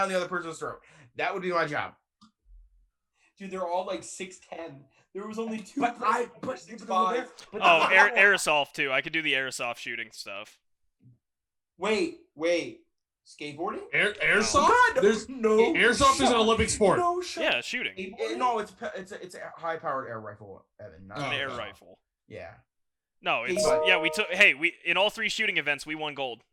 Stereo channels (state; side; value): identical; both; correlation 1.00